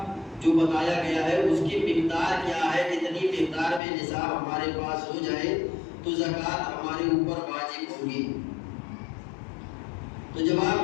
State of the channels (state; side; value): drops out; right; at 3.8 s